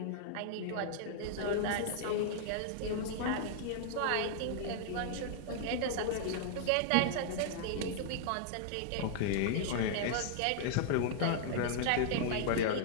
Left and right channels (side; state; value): both; different; correlation -0.01